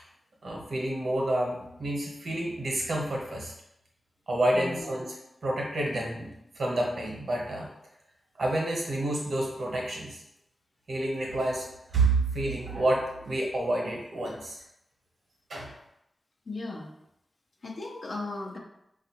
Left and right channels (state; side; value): normal; both; correlation 0.81